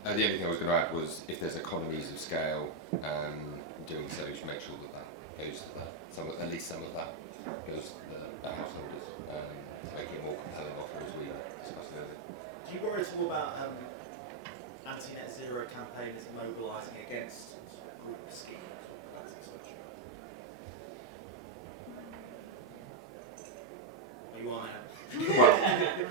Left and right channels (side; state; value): left; quieter; 4.0 dB